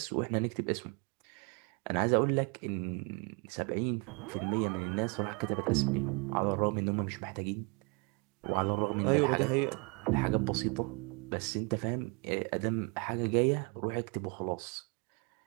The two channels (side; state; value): left; quieter; 32.6 dB